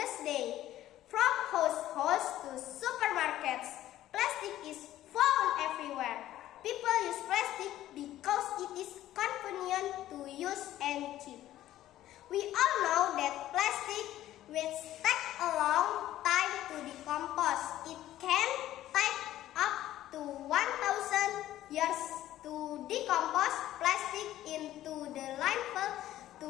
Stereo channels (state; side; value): quieter; right; 13.6 dB